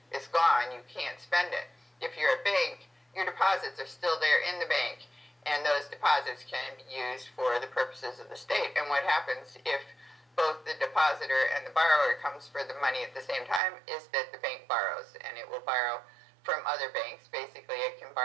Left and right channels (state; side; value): drops out; left; at 13.6 s